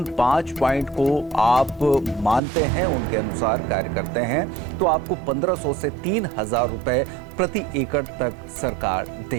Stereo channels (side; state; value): left; drops out; at 2.4 s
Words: 5 पॉइंट को आप मानते हैं, उनके अनुसार कार्य करते हैं, तो आपको 1,500 से 3,000 रुपए प्रति एकड़ तक सरकार